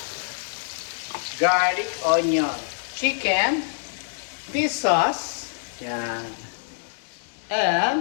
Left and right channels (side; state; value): right; silent; 61 dB below the other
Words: garlic, onion, chicken, this sauce. Ayan.